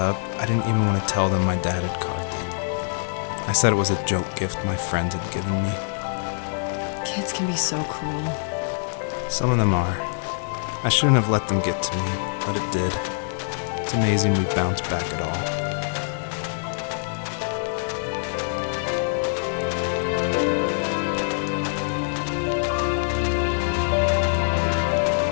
I didn't even want to tell them my dad had carved it. I said it was a joke gift my friend had given me. Kids can be so cruel. Some of them are. I shouldn't have let them get to me, but it did. It's amazing we bounced back at all.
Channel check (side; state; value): right; silent; digital silence